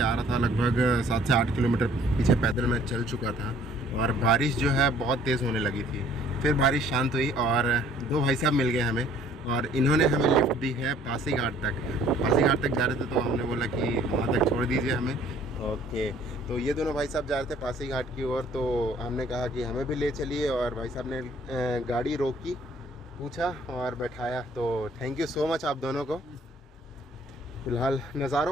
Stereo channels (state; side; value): normal; both; correlation 0.57